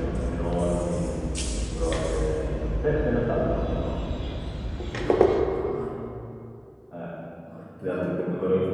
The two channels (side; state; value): both; identical; correlation 1.00